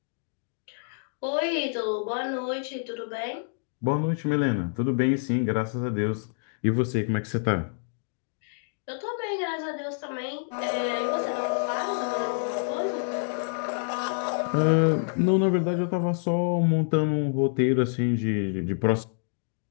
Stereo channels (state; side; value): silent; right; digital silence